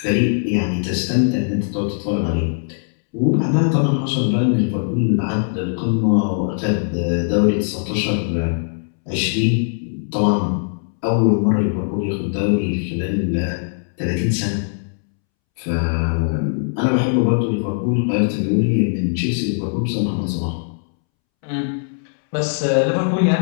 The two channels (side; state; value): right; silent; 66 dB below the other